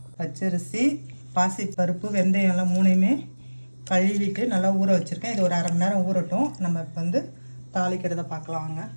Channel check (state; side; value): inverted; both; correlation -1.00